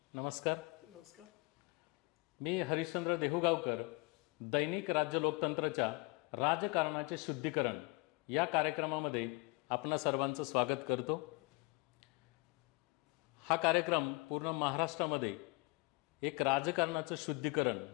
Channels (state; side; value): quieter; right; 25.4 dB